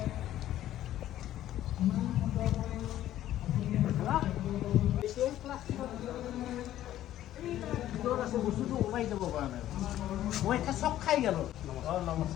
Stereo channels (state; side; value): quieter; right; 13.0 dB